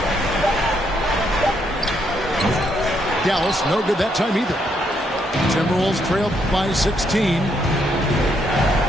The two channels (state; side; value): normal; both; correlation 0.75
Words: Dallas, no good that time either. Timberwolves trailed by 16.